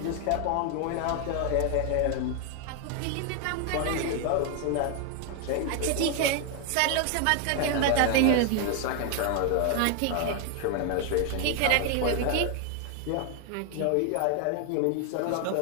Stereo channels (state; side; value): different; both; correlation 0.01